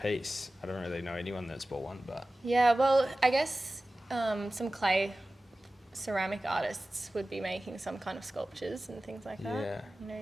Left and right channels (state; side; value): normal; both; correlation 0.96